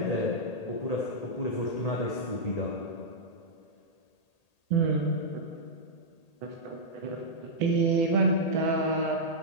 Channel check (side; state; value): right; late; 1.8 ms